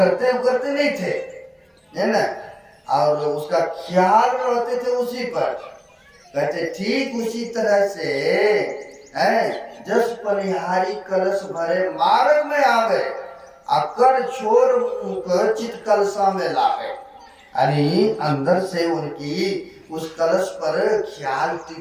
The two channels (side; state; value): both; identical; correlation 1.00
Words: उकड़ते नहीं थे, है ना। और उसका ख्याल रहते थे उसी पर। कहते ठीक उसी तरह से जस पनिहारी कलश भरे मार्ग में आवे, अकर छोर चित कलशा में लावे। यानी अंदर से उनकी उस कलश पर ख्याल